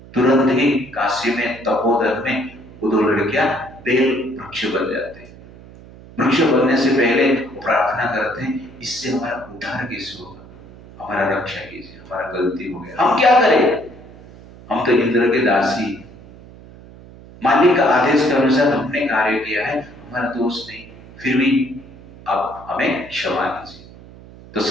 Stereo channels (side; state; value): right; noise; hum, 20 dB below the sound